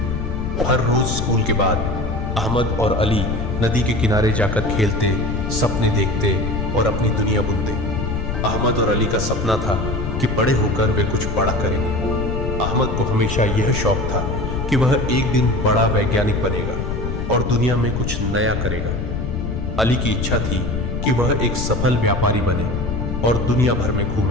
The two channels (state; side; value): noise; left; rumble, 3 dB below the sound